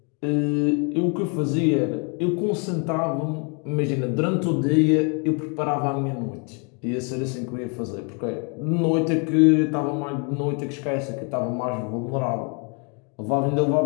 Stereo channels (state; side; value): quieter; right; 36.1 dB